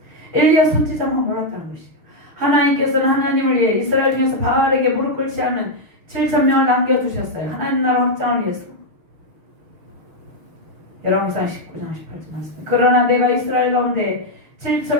엘리야 선지자만 몰랐다는 것이에요. 하나님께서는 하나님을 위해 이스라엘 중에서 바알에게 무릎 꿇지 않은 7,000명을 남겨두셨어요. 하나님 나라 확장을 위해서. 열왕기상 19장 18절 말씀. 그러나 내가 이스라엘 가운데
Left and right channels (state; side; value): late; left; 6.4 ms